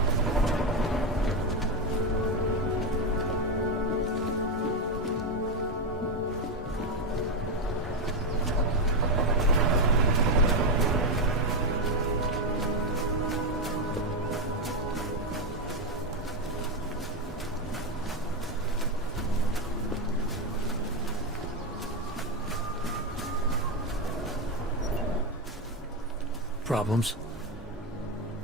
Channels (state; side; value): normal; both; correlation 0.09